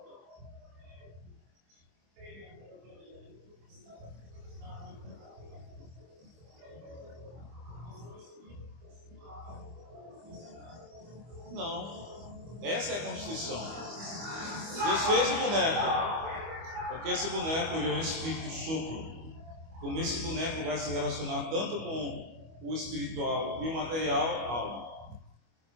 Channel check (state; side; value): late; left; 25 ms